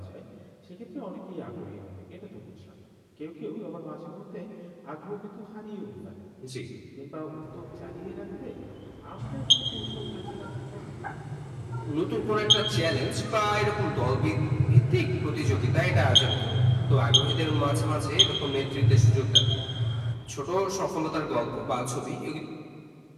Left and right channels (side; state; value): both; identical; correlation 1.00